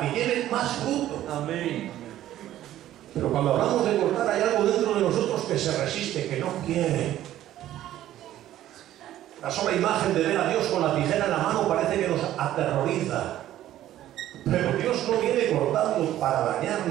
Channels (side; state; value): left; quieter; 13.1 dB